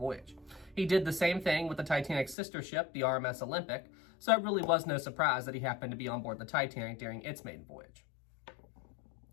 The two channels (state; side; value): drops out; right; at 2.4 s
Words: He did the same thing with the Titanic's sister ship, the RMS Olympic, so it really was no surprise that he happened to be on board the Titanic during its maiden voyage.